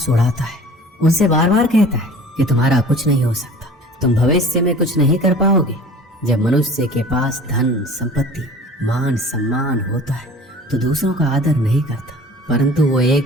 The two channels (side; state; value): both; normal; correlation 0.44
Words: उड़ाता है, उनसे बार बार कहता है कि तुम्हारा कुछ नहीं हो सकता, तुम भविष्य में कुछ नहीं कर पाओगे। जब मनुष्य के पास धन, संपत्ति, मान, सम्मान होता है तो दूसरों का आदर नहीं करता, परंतु वो